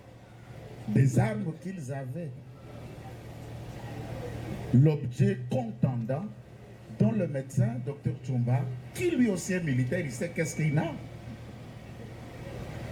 des armes qu'ils avaient. L'objet contendant dont le médecin, Dr Tchumba, qui lui aussi est militaire, il sait qu'est-ce qu'il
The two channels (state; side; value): identical; both; correlation 1.00